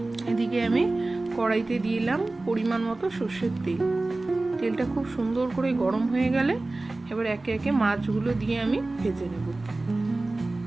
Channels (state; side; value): quieter; left; 3.0 dB